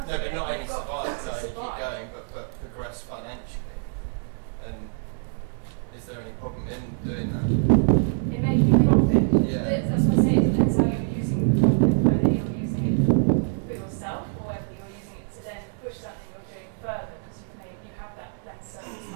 to No, but it, not only you've got survive, to no, you keep survive. going, but progress financially. And is there any problem in doing that? In making profit? Yeah. That's what I'm saying, it depends how you're using the profit, whether you're using it for yourself or whether you're using it to then push something you're doing further, because you have that then surplus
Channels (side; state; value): left; silent; digital silence